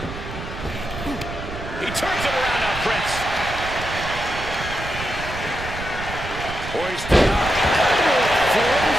He turns it around on Prince. Hoisted up.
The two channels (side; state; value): right; noise; rumble, 9 dB below the sound